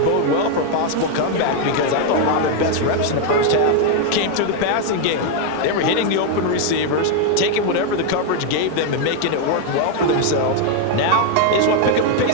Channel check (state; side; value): different; both; correlation 0.01